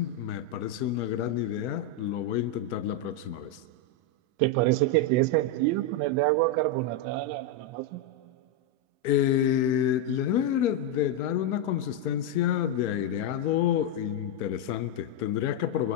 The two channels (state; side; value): late; left; 1.0 ms